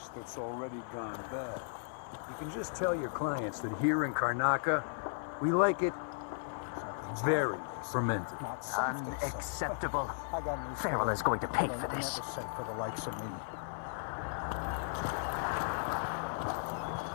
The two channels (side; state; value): right; silent; 54 dB below the other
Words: that's already gone bad. You can just tell your clients that here in Karnaca, we like it very fermented. Unacceptable. Farrell is going to pay for this.